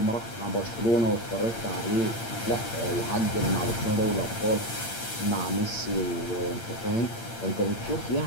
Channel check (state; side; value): late; right; 8.8 ms